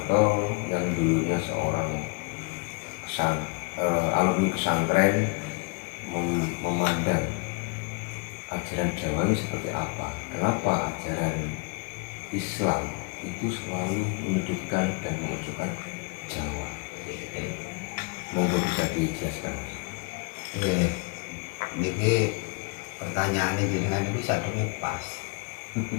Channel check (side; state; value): right; quieter; 31.2 dB